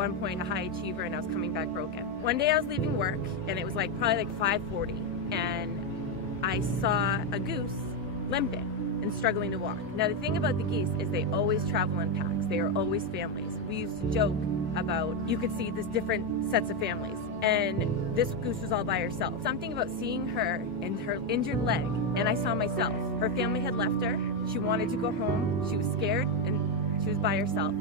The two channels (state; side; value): normal; both; correlation 0.06